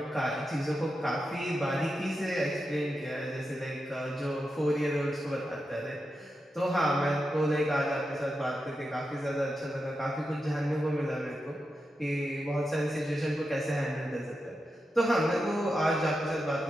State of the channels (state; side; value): normal; both; correlation 0.88